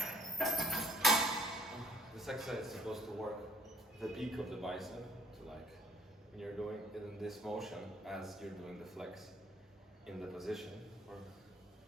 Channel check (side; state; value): both; normal; correlation 0.62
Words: This exercise is supposed to work the peak of the bicep, to like when you're doing it in this motion as you're doing the flex in the position, or